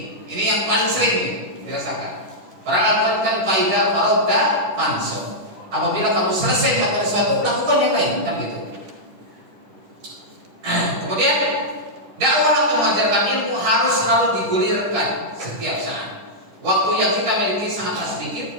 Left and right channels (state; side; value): late; left; 10 ms